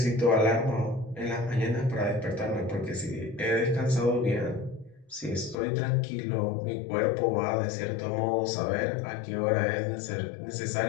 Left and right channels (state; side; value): drops out; right; at 5.6 s